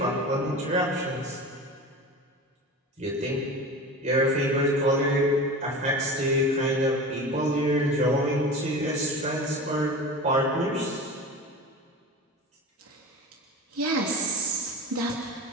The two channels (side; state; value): both; normal; correlation 0.32